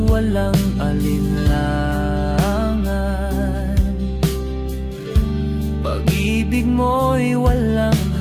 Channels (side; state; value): both; identical; correlation 1.00